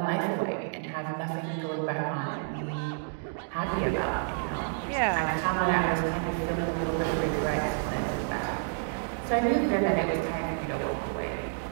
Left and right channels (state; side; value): silent; left; digital silence